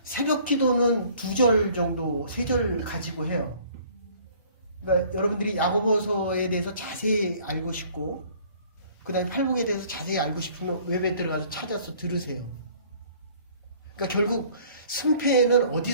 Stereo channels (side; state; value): both; inverted; correlation -0.55